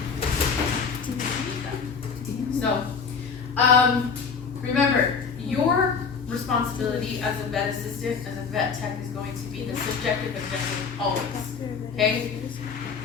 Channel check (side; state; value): right; quieter; 5.6 dB